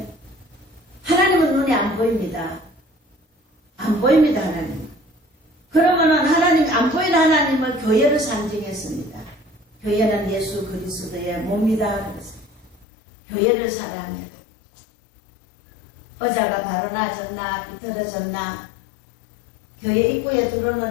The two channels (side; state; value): right; drops out; at 12.9 s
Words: 하나님은 눈에 안 보입니다. 안 보입니다. 하나님. 그러면은 하나님 안 보이는 하나님을 교회를 상징했습니다. 교회는 예수 그리스도의 몸이다 그랬어요. 교회를 사랑해라. 의자가 바로 나졌나 비틀어졌나 교회 입구에